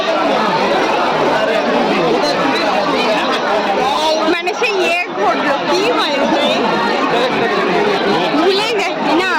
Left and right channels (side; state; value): both; identical; correlation 1.00